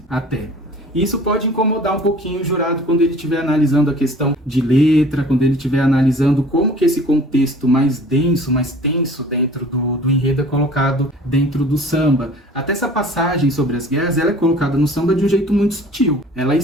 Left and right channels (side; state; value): both; normal; correlation 0.48